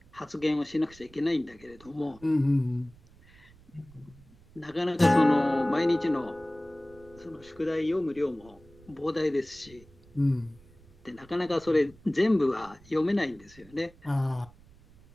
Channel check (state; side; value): noise; right; rumble, 25 dB below the sound